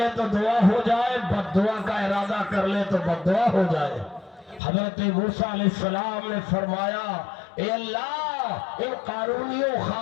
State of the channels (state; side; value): drops out; right; at 4.6 s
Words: تو دعا ہو جائے، بد دعا کا ارادہ کر لے تو بد دعا ہو جائے. حضرت موسیٰ علیہ السلام نے فرمایا اے اللہ، ان قارونیوں